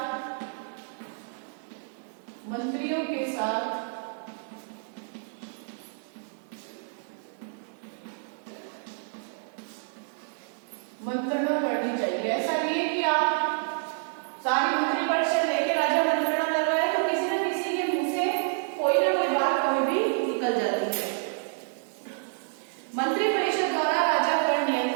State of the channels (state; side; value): silent; left; digital silence